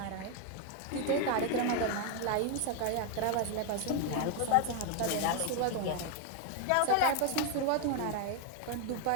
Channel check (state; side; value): different; both; correlation 0.01